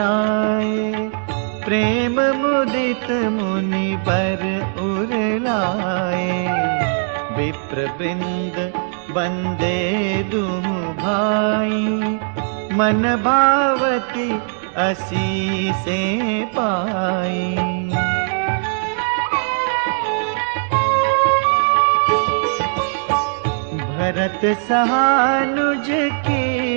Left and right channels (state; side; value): silent; left; digital silence